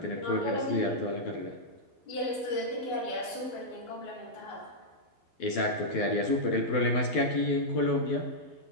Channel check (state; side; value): late; right; 12 ms